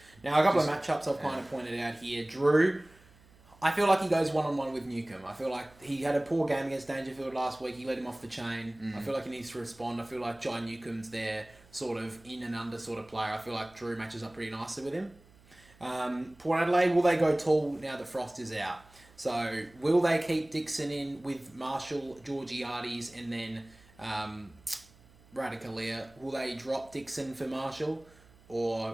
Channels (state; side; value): noise; right; hum, 27 dB below the sound